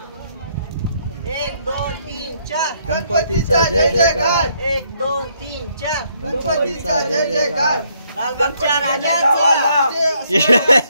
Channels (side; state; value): both; inverted; correlation -0.71